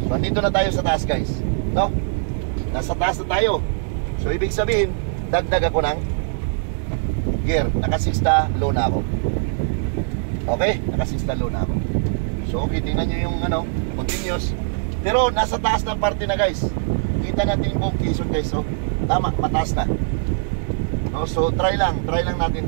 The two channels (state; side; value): silent; left; digital silence